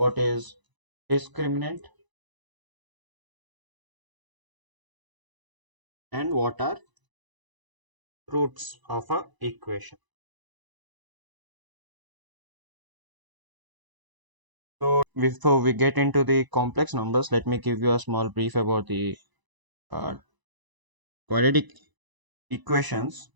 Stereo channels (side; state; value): left; late; 1.0 ms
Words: is discriminant, and what are roots of a equation. So before we get into the complex numbers, let me give you a small brief about the uh, quadratic equations.